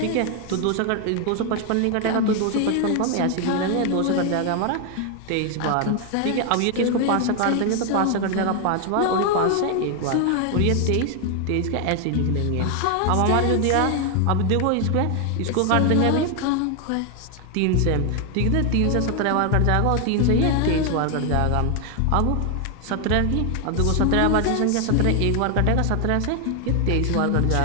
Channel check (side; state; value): both; different; correlation 0.00